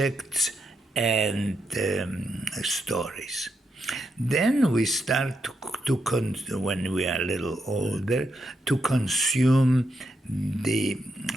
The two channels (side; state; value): both; normal; correlation 0.82